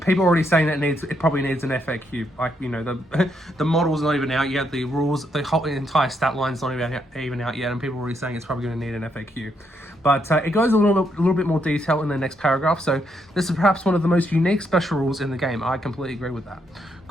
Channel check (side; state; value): both; normal; correlation 0.77